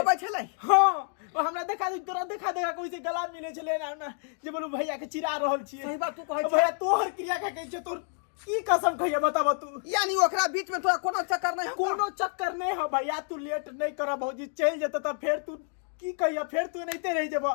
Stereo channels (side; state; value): right; silent; 57 dB below the other